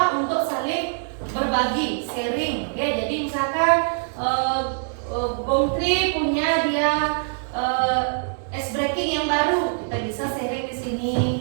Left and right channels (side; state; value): left; silent; digital silence